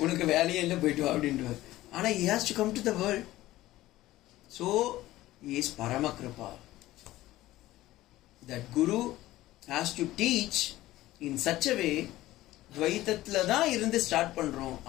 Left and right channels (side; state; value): right; quieter; 16.2 dB